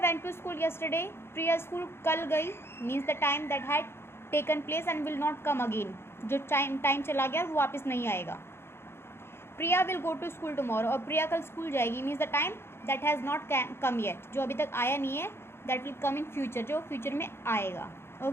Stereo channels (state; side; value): late; right; 0.12 ms